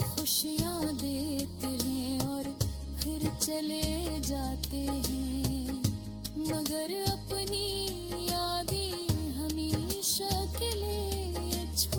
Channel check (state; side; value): identical; both; correlation 1.00